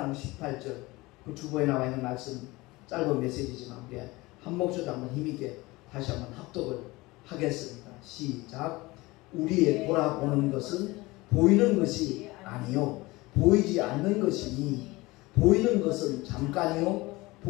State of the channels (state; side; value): quieter; right; 21.6 dB